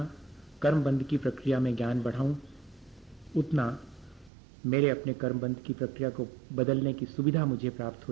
कर्मबंध की प्रक्रिया में ज्ञान बढ़ाऊं, उतना मेरे अपने कर्मबंध की प्रक्रिया को बदलने की सुविधा मुझे प्राप्त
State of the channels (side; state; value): left; drops out; at 4.3 s